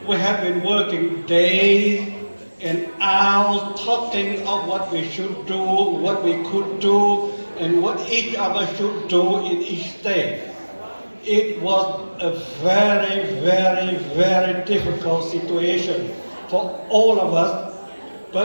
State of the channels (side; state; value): both; inverted; correlation -1.00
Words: we have been working days and hours talking of what we should do, what we could do, and what each of us should do in each state. It was a very, very, very difficult situation for all of us,